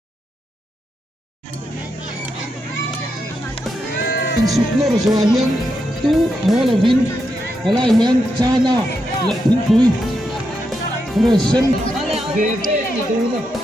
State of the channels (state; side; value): normal; both; correlation 0.83